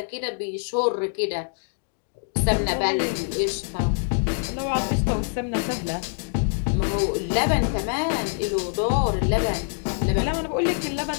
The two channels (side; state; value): right; silent; digital silence